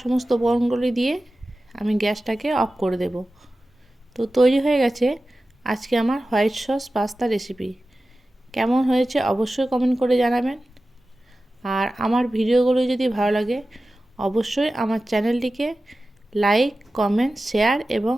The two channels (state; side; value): normal; both; correlation 0.95